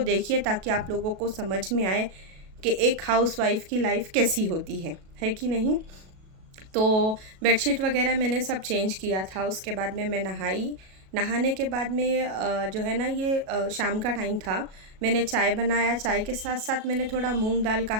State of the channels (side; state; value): left; late; 37 ms